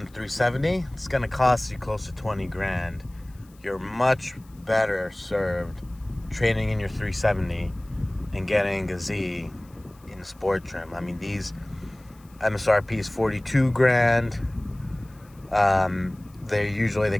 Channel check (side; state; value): left; noise; hiss, 29 dB below the sound